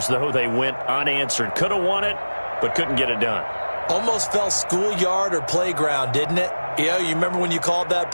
though, they went unanswered. Could have won it, but couldn't get it done. Almost felt schoolyard or playground, didn't it? You remember when you called that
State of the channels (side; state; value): both; inverted; correlation -1.00